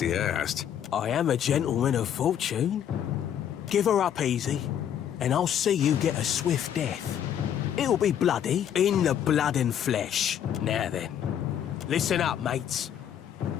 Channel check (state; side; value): quieter; right; 9.6 dB